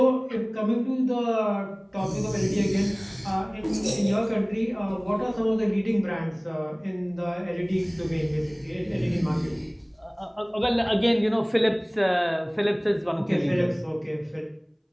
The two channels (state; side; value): identical; both; correlation 1.00